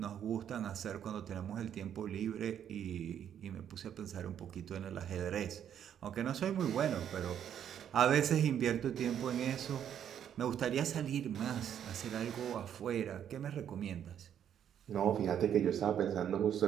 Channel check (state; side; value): quieter; left; 9.4 dB